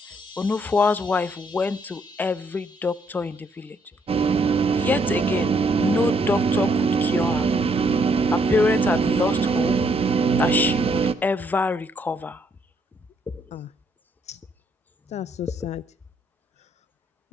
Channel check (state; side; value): normal; both; correlation 0.71